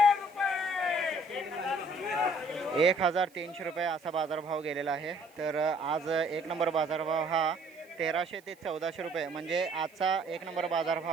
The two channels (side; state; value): right; noise; hiss, 30 dB below the sound